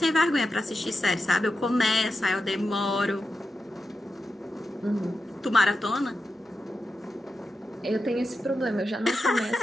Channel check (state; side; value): normal; both; correlation 0.90